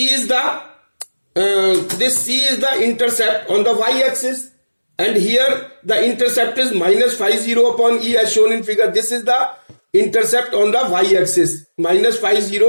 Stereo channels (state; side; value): inverted; both; correlation -1.00